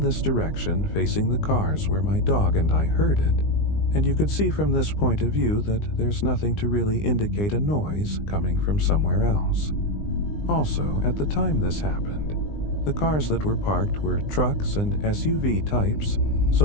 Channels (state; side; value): late; right; 20 ms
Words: direction, facing the cars, where my dog and I heard it, and you could see from this point of view that there's nothing to really indicate a noise coming from somewhere else. Also, at the time this happened, the cars that were parked were trucks and SUV types,